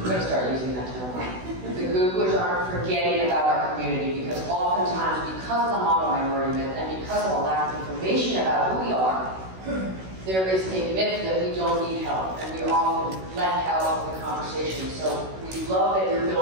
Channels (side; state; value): left; late; 16 ms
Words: going to start using that term, the Googlers aren't forgetting about our community because oftentimes because of the model minority myth and because of a lack of information about who we are, there is a myth that we don't need help and we are often left out of the conversation. So we love that your